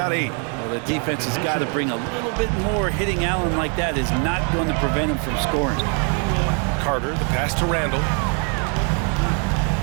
8. Well, the defense has got to bring a little bit more. Hitting Allen like that is not going to prevent him from scoring. Carter, the pass to Randall.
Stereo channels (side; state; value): left; quieter; 39.2 dB